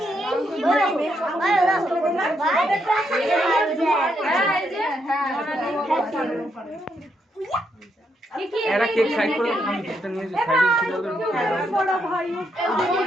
এরা কেক সাইড করে আমি কেকটা নিয়ে সাইডে ছিল তো বড় ভাই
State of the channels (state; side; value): normal; both; correlation 0.78